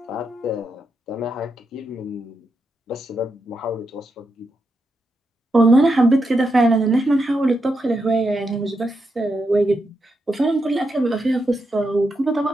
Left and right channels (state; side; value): normal; both; correlation 0.84